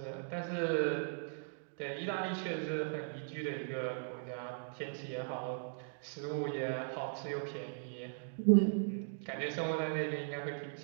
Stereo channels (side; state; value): left; silent; digital silence